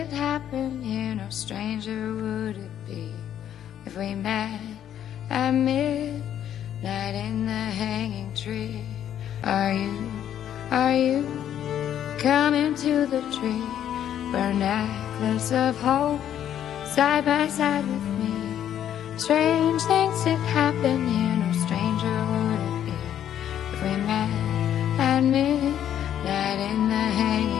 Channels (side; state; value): right; quieter; 10.4 dB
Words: happen here, no stranger would it be if we met at midnight in the hanging tree. Are you coming to the tree where a necklace of hope side by side with me? Strange things did happen here, no stranger would it be if we met at midnight in the